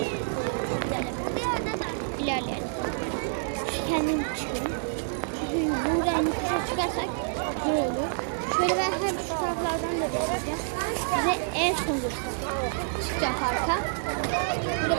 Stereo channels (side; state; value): left; silent; 59 dB below the other